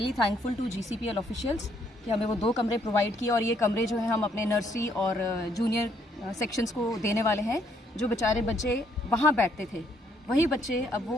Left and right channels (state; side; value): normal; both; correlation 0.69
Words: thankful to GCPL officials कि हमें वो 2 कमरे प्रोवाइड किए और ये कमरे जो हैं हम अपने नर्सरी और जूनियर सेक्शंस को देने वाले हैं। जो बेचारे बच्चे वहाँ बैठते थे वही बच्चे अब